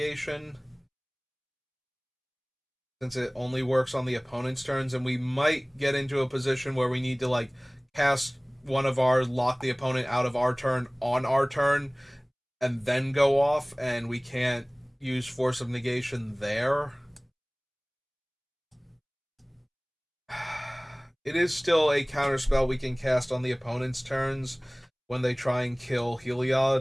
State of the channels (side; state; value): both; identical; correlation 1.00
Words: since it only works on the opponent's turns, and we might get into a position where we need to like cast one of our, lock the opponent out of our turn on our turn, and then go off, and we can't use Force of Negation there. It is still a counterspell we can cast on the opponent's turns when they try and kill